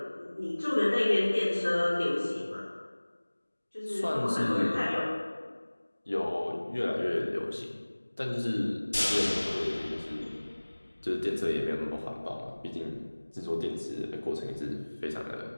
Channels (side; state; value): both; inverted; correlation -1.00